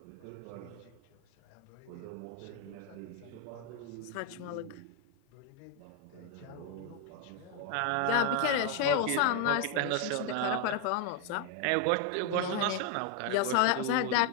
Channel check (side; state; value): both; different; correlation 0.01